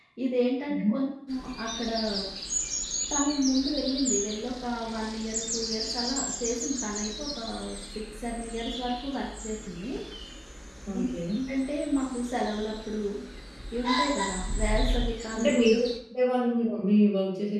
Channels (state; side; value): identical; both; correlation 1.00